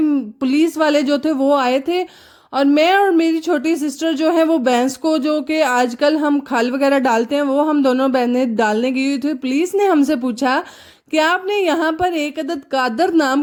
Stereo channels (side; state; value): both; identical; correlation 1.00